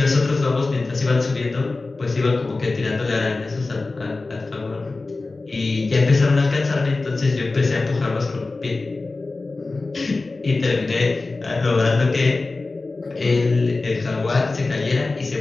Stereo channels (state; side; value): quieter; right; 3.5 dB